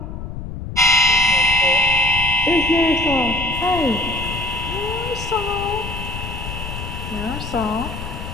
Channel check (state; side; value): noise; left; rumble, 8 dB below the sound